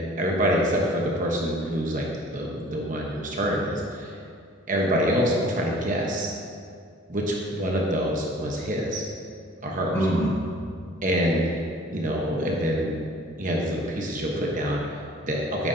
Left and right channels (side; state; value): both; normal; correlation 0.50